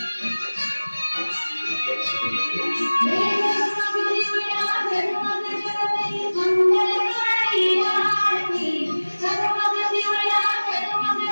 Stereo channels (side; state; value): both; inverted; correlation -1.00